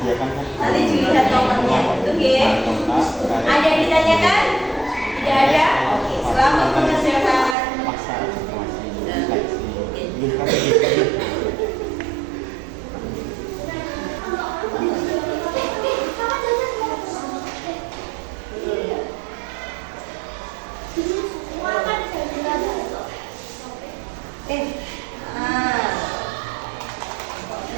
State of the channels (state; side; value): drops out; left; at 7.6 s